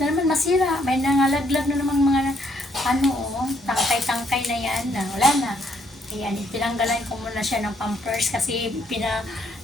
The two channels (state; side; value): normal; both; correlation 0.70